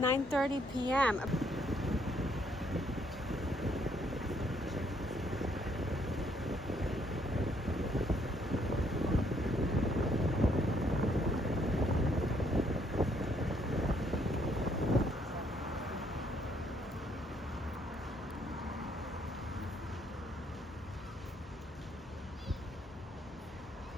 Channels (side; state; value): both; normal; correlation 0.69